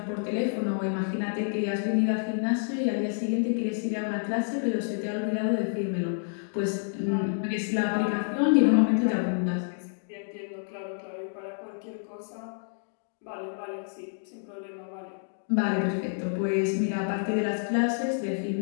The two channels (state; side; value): silent; right; digital silence